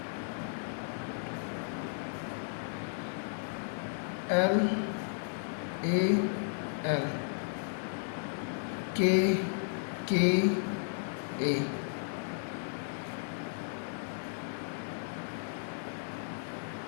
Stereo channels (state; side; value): silent; right; digital silence